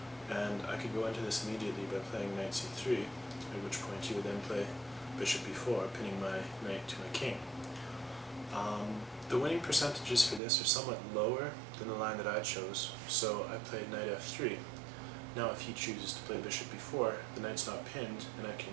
and I could go into this immediately by playing knight c3, at which point you would then play bishop b4, pinning my knight to my king. The winning percentages for this are somewhat lower than the line that I chose, so I played knight f3. Now if he chooses to play bishop b4, the knight's not pinned, and I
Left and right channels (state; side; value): drops out; left; at 10.4 s